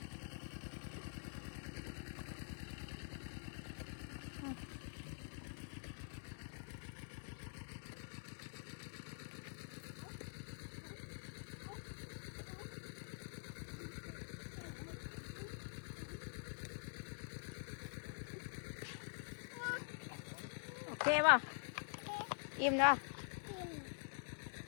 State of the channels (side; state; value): right; silent; digital silence